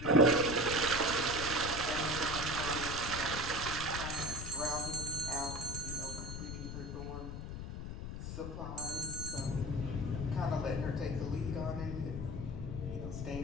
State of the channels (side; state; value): left; noise; rumble, 6 dB below the sound